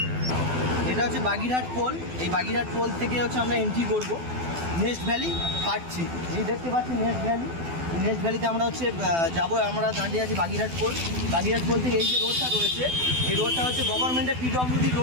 এটা হচ্ছে বাগিরহাট পোল। এই বাগিরহাট পোল থেকে হচ্ছে আমরা এন্ট্রি করব নেস্ট ভ্যালি পার্ট 3। এই দেখতে পাচ্ছি নেস্ট ভ্যালি। নেস্ট ভ্যালিতে আমরা হচ্ছে যাবো। আমরা দাঁড়িয়ে আছি বাগিরহাট পোল। বাগিরহাট পোল থেকে এই যে রোডটা রয়েছে, এই রোডটা হচ্ছে গভর্নমেন্টের পিডব্লিউডি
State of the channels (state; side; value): late; left; 12 ms